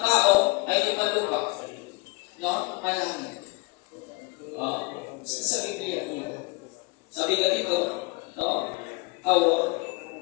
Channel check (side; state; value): right; quieter; 26.8 dB